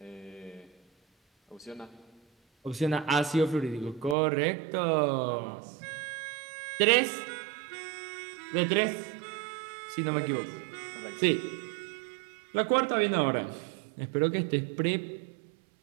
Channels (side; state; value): left; drops out; at 4.2 s